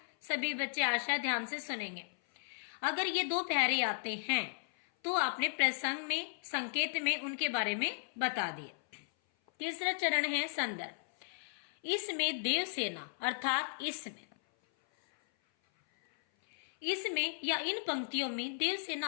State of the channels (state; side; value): silent; right; 54 dB below the other